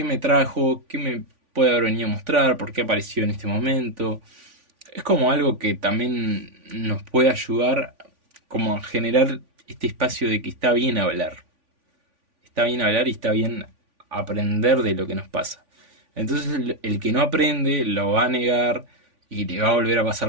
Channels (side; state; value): left; late; 3.5 ms